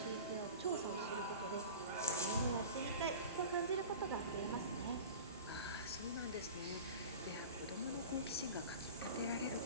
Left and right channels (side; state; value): both; inverted; correlation -0.34